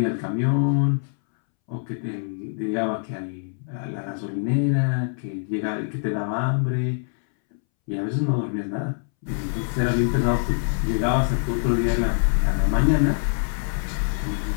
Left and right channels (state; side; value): silent; right; 62 dB below the other